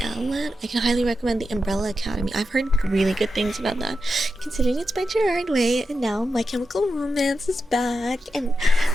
outlet, I can highly recommend the Umbrella Academy. I've heard really good things about that, considering it's by Gerard Way, and now My Chemical Romance is back, and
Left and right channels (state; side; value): normal; both; correlation 0.89